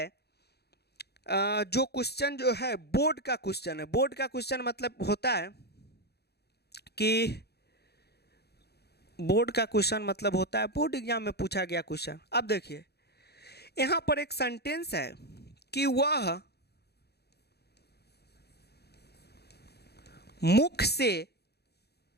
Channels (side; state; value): right; late; 0.47 ms